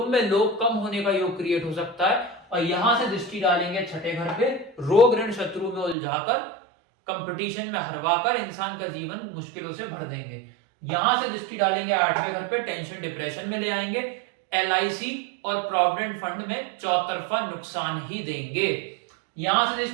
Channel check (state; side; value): drops out; left; at 6.0 s